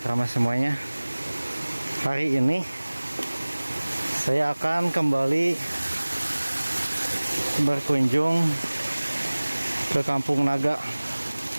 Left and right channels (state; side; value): inverted; both; correlation -1.00